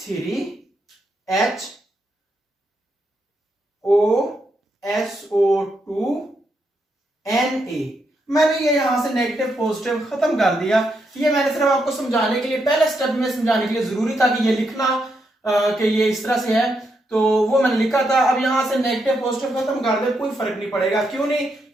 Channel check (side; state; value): both; normal; correlation 0.80